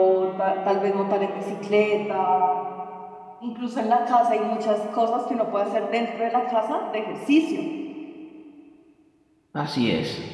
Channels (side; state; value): both; identical; correlation 1.00